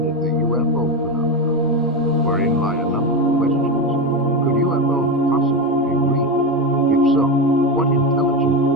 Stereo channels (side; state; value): both; normal; correlation 0.15